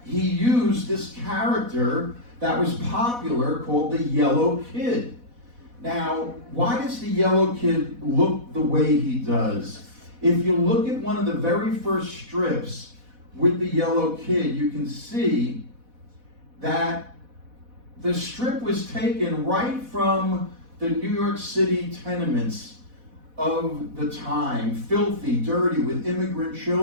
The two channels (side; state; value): left; late; 4.1 ms